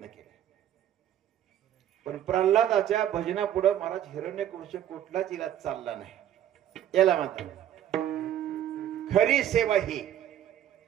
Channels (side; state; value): left; quieter; 10.9 dB